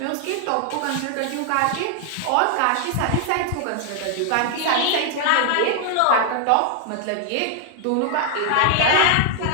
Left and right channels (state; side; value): different; both; correlation 0.00